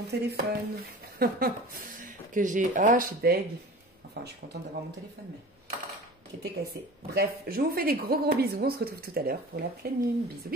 téléphone. Que j'ai... Ah, je suis deg. Enfin, je suis contente d'avoir mon téléphone, mais qui était cassé. Bref, je vous fais des gros bisous. On se retrouve tout à l'heure pour la pleine lune. Bisous,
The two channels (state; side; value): normal; both; correlation 0.38